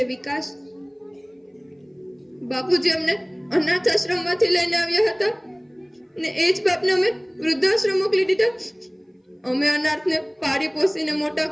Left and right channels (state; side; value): identical; both; correlation 1.00